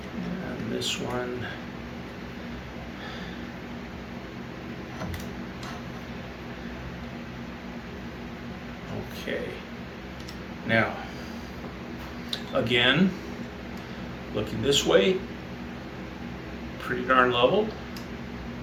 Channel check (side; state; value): both; identical; correlation 1.00